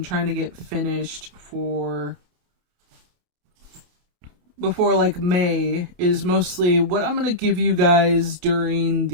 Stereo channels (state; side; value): late; left; 28 ms